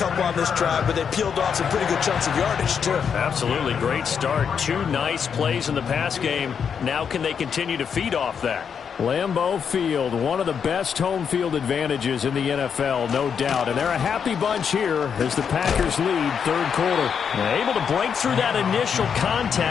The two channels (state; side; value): quieter; right; 7.0 dB